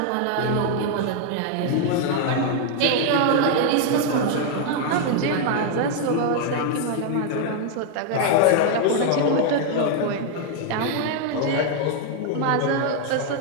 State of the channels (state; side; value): different; both; correlation 0.00